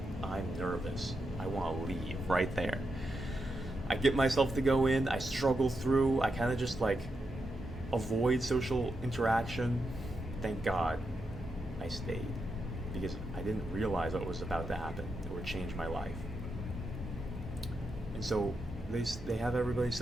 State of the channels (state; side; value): normal; both; correlation 0.85